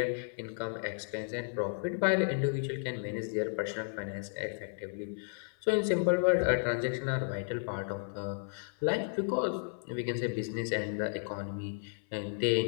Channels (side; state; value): right; silent; 56 dB below the other